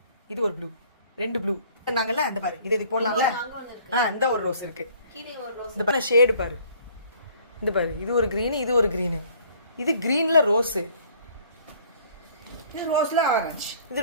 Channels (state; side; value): inverted; both; correlation -0.56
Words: இது ஒரு ப்ளூ, ரெண்டு ப்ளூ நாங்கல்ல. அந்த பாரு, இது போடலாம்ல. இந்த ஒரு ரோஸ் இருக்கு, இந்த பாரு ஷேடு பாரு, இந்த பாரு, இது ஒரு கிரீன், இது ஒரு கிரீன், இது கிரீன்ல ரோஸ், இது ரோஸ்ல ஆரஞ்சு, இது